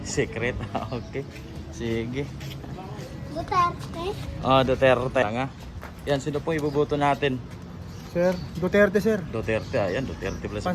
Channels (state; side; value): identical; both; correlation 1.00